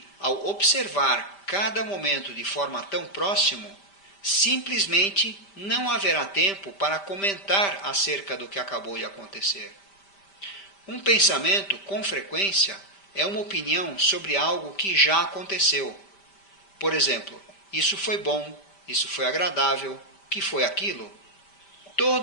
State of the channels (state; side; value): late; right; 5.1 ms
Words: ao observar cada momento de forma tão próxima, simplesmente não haverá tempo para comentar acerca do que acabou de acontecer. Um pensamento, com frequência, é uma opinião sobre algo que já aconteceu. Por exemplo, isso foi bom, isso foi agradável, o que foi aquilo?